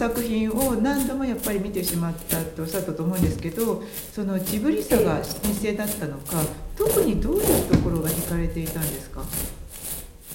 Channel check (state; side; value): identical; both; correlation 1.00